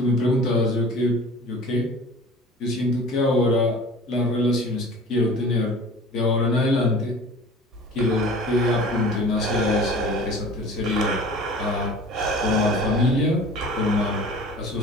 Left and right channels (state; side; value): normal; both; correlation 0.42